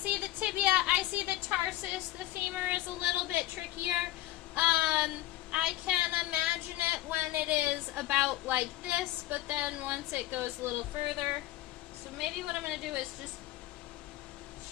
the tibia, I see the tarsus, the femur is a little bit trickier. I can imagine it when it is about like this, but then once it goes a little further. So maybe what I'm going to do is just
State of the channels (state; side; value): quieter; right; 15.7 dB